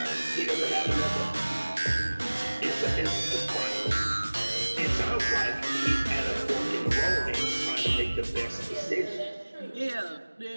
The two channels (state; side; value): inverted; both; correlation -1.00